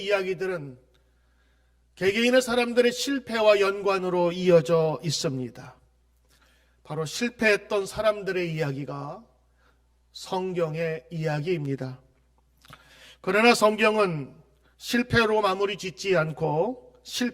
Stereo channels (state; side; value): identical; both; correlation 1.00